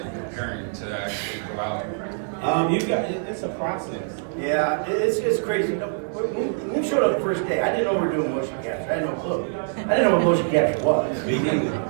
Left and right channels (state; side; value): silent; left; 56 dB below the other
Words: preparing to actually go out? It's a process. Yeah, it's crazy. When we showed up the first day, I didn't know we were doing motion capture. I had no clue. I didn't know what motion capture was. Me neither.